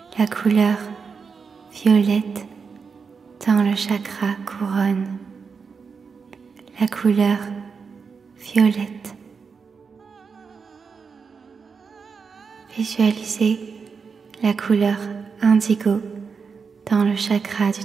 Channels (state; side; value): quieter; left; 5.5 dB